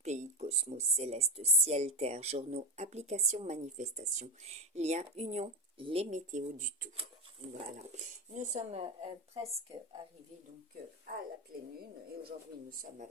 pays, cosmos, céleste, ciel, terre, journaux, applications, manifestations, liens, union, les météos du tout. Voilà, nous sommes presque arrivés donc à la pleine lune et aujourd'hui nous sommes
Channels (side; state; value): both; normal; correlation 0.13